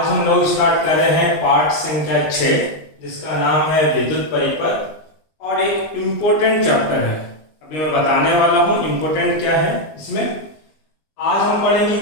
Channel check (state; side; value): late; right; 19 ms